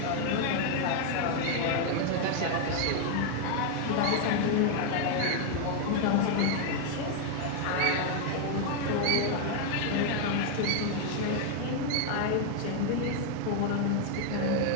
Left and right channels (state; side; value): different; both; correlation 0.01